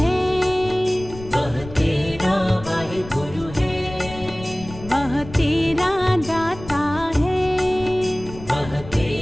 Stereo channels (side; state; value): left; noise; rumble, 15 dB below the sound